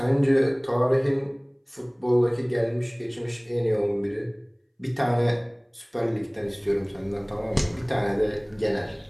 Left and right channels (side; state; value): both; identical; correlation 1.00